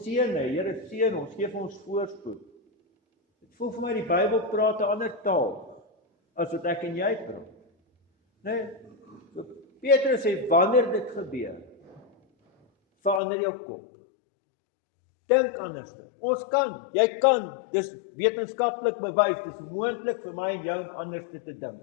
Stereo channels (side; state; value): right; drops out; at 13.2 s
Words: hê, Here seën ons, gee vir ons voorspoed. Dit voel vir my die Bybel praat 'n ander taal as wat ek en jy praat. Nee, so Petrus sê, wanneer dit gebeur, verander jou kop. Dink anders. Ons kan, jy kan, dis wetenskaplik bewys, dis moontlik vir my en jou anders te dink.